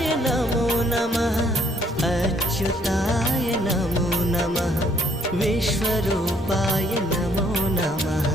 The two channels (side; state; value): both; normal; correlation 0.65